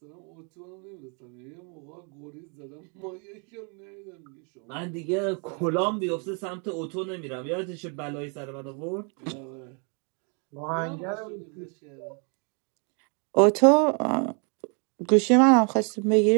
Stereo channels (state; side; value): quieter; left; 37.5 dB